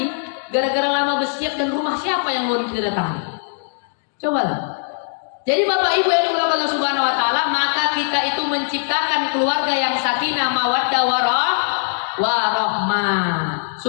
gara-gara lama bersiap dan rumah siapa yang mau didatangi. Cobalah. Jadi Bapak Ibu yang dimuliakan Allah Subhanahu wa taala, maka kita itu menciptakan keluarga yang sakinah, mawaddah, warahmah.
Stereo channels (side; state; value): right; silent; digital silence